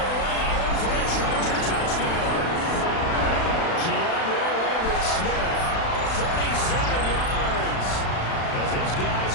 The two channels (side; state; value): right; late; 36 ms